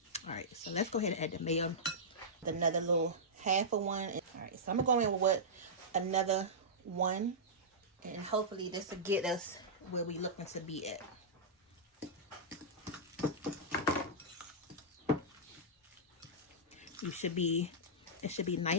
Alright, so let's go ahead and add the mayo. Another little half of one. Alright, so I'm going to go in with another one. And hopefully this will get us where we're looking to be at. It should be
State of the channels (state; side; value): normal; both; correlation -0.13